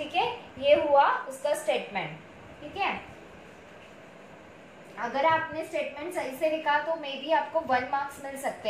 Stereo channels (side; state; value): both; identical; correlation 1.00